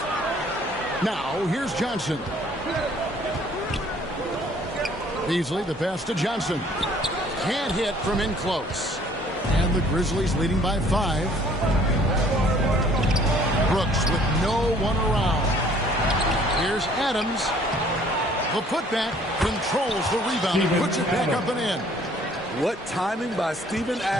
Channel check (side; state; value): both; normal; correlation 0.58